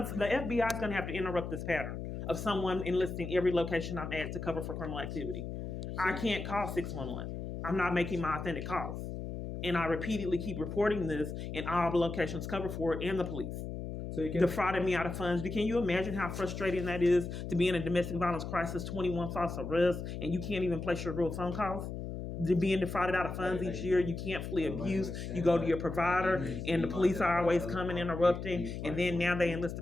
is going to have to interrupt this pattern of someone enlisting every location I'm at to cover for criminal activity. I can't call 611. I'm not making my authentic calls, and I repeatedly keep reporting this, and all the locations cover for it and the police. so you can Defrauded me out of funds. Can you imagine how frustrating that is to be in a domestic violence crisis, 21 false arrests, and you can't even place your real phone calls? being defrauded out of funds each year. You can't flee abuse. You go to your provider, and the police are always coming, interrupting, and then now they enlist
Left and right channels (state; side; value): noise; left; hum, 6 dB below the sound